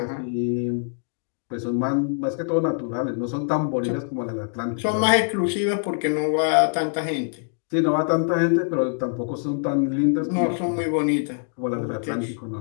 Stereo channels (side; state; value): right; silent; digital silence